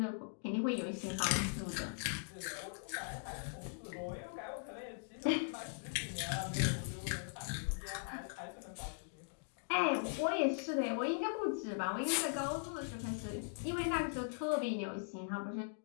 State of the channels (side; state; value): right; silent; digital silence